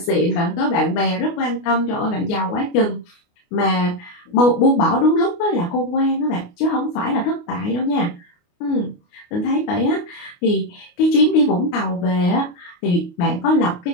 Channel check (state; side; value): late; right; 29 ms